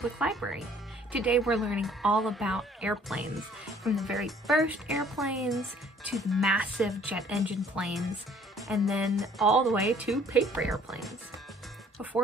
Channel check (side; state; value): both; normal; correlation 0.58